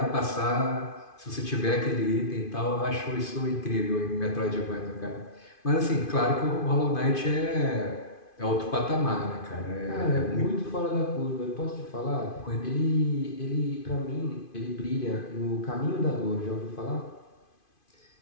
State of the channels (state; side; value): late; right; 2.5 ms